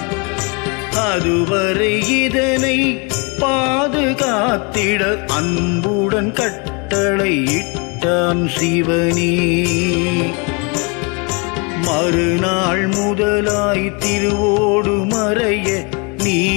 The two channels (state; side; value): quieter; right; 31.6 dB